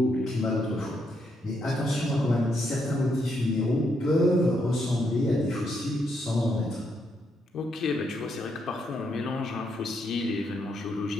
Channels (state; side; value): normal; both; correlation 0.78